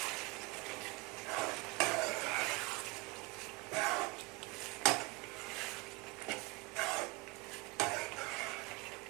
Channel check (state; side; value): quieter; left; 24.6 dB